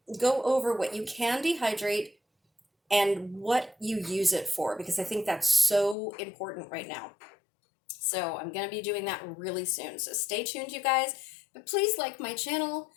go over what you can dehydrate and what you use it for, because I think that's so important right now. So I'm going to be doing that really soon. So stay tuned, you guys. But please like my channel.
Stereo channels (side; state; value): right; drops out; at 6.0 s